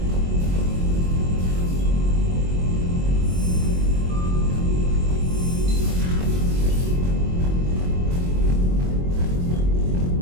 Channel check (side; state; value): left; late; 22 ms